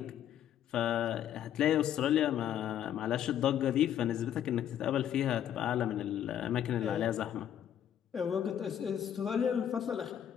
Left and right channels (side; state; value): right; quieter; 10.1 dB